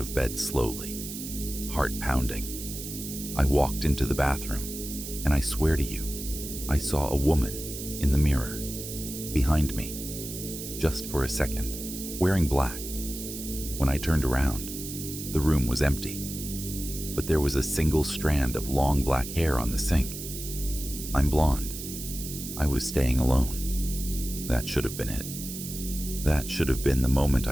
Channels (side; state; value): right; noise; hiss, 9 dB below the sound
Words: bed slowly, heart pounding. I walked into the bathroom, and I swear to you, I saw a woman in the mirror, behind me, just for a second, wearing black. When I turned around, the room was empty, but there was a single strand of long black hair on the sink. I'm blonde. I was staying alone. That should have been it. That should have been the moment